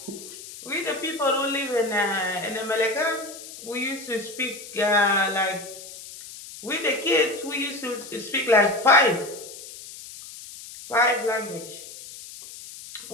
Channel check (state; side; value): noise; left; hiss, 14 dB below the sound